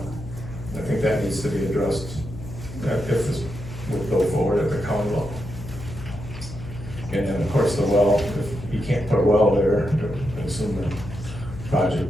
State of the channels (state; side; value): noise; left; hum, 12 dB below the sound